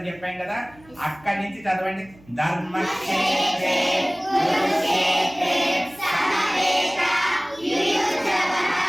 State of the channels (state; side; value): noise; right; hum, 26 dB below the sound